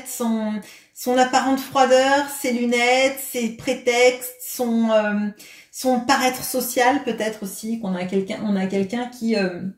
son apparente froideur, ses lunettes, ses prétextes, son paraître social peut-être aussi. On a quelqu'un qui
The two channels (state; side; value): identical; both; correlation 1.00